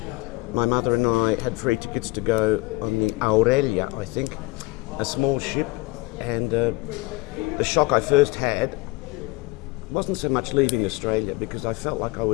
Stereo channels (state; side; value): quieter; right; 22.5 dB